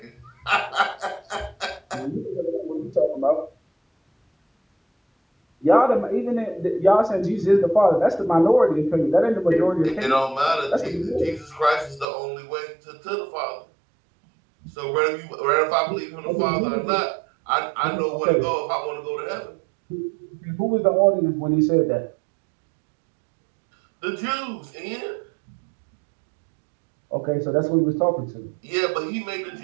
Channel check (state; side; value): drops out; left; at 12.1 s